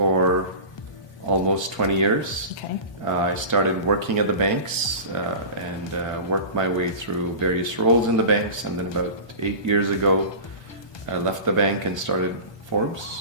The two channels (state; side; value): late; right; 1.2 ms